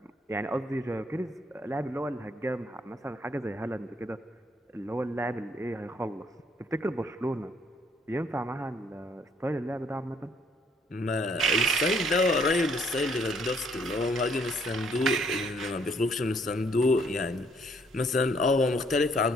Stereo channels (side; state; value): both; normal; correlation 0.65